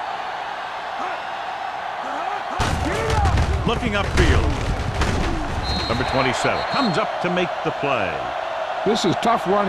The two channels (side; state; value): both; identical; correlation 1.00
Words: Looking upfield. Number 27 comes up to make the play. This is tough